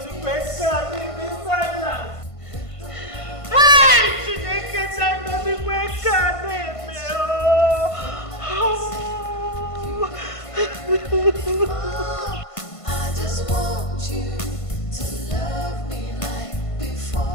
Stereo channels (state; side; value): late; right; 1.5 ms